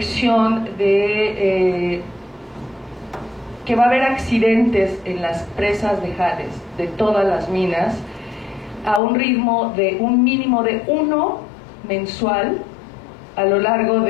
de que va a haber accidentes en las presas de jales de todas las minas a un ritmo de un mínimo de 1 mensual a lo largo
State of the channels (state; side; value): drops out; right; at 9.0 s